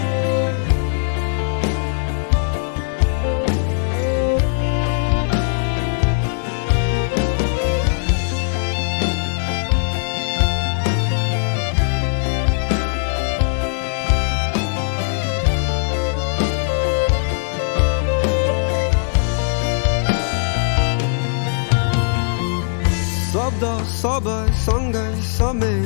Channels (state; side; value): silent; right; digital silence